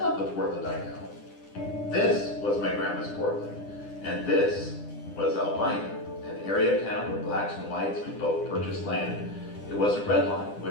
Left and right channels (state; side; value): late; right; 10 ms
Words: the Portland I know. This was my grandma's Portland, and this was Albina, an area of town where blacks and whites could both purchase land. It wasn't redline,